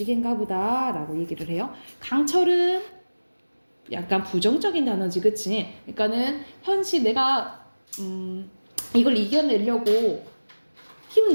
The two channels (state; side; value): inverted; both; correlation -1.00